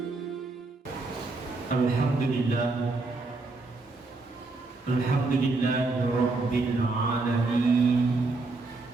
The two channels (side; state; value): left; quieter; 3.5 dB